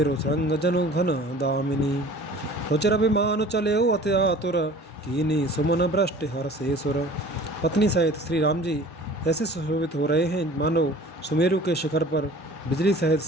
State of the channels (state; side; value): normal; both; correlation 0.46